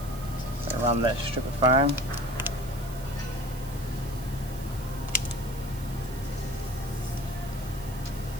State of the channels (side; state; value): right; noise; hiss, 16 dB below the sound